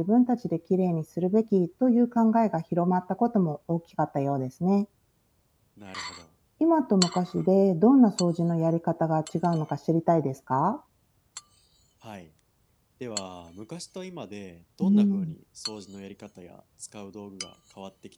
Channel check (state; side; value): identical; both; correlation 1.00